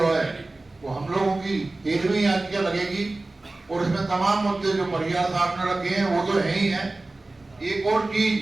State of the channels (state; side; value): quieter; left; 3.0 dB